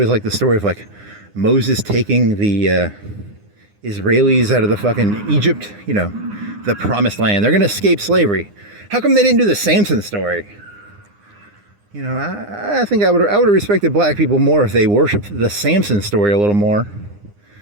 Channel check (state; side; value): late; left; 9.8 ms